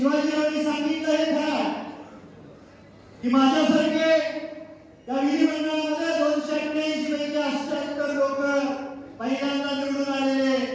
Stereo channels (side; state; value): both; identical; correlation 1.00